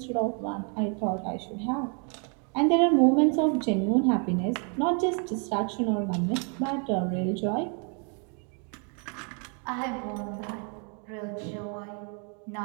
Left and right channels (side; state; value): left; quieter; 39.4 dB